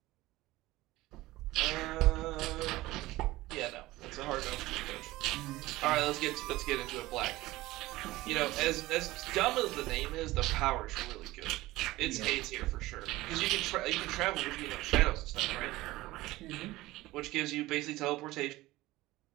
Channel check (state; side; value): quieter; left; 18.3 dB